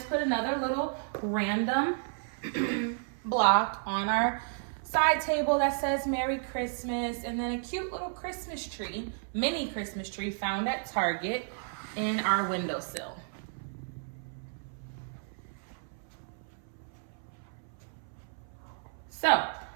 put another little random block on our side table that says Merry Christmas, and then a cute little Christmas tree, mini Christmas tree found at Target in our windowsill. So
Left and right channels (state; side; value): silent; left; 56 dB below the other